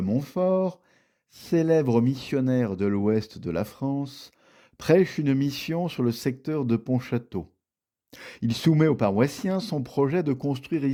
célèbre missionnaire de l'ouest de la France, prêche une mission sur le secteur de Pontchâteau. Il soumet aux paroissiens son projet de construire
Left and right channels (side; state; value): both; identical; correlation 1.00